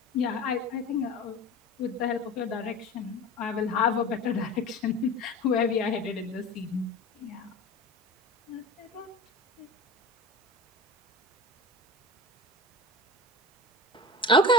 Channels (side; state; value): both; normal; correlation 0.33